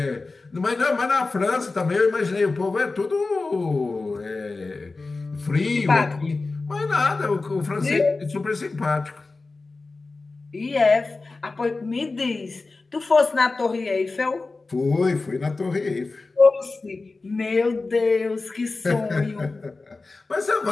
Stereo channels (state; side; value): quieter; right; 3.6 dB